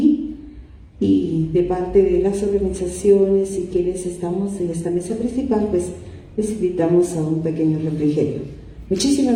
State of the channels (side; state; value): both; identical; correlation 1.00